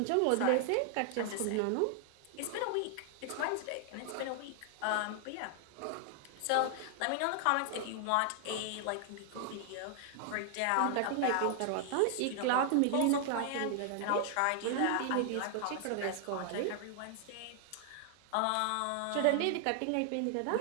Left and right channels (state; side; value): different; both; correlation 0.00